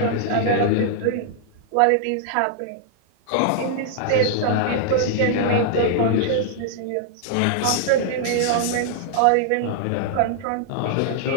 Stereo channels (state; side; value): different; both; correlation -0.01